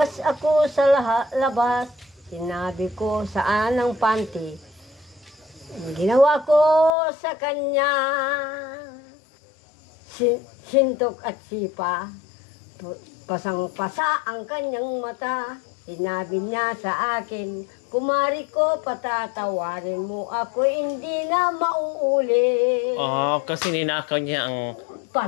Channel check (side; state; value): right; drops out; at 7.0 s